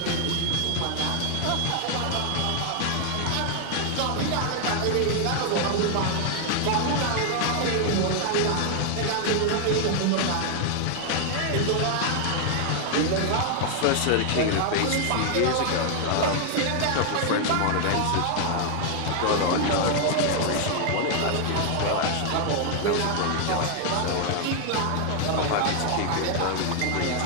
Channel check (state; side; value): different; both; correlation 0.00